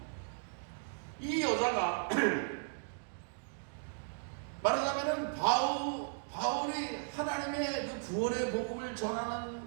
이 여자가 말하자면은 바울이 하나님의 그 구원의 복음을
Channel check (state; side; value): silent; left; digital silence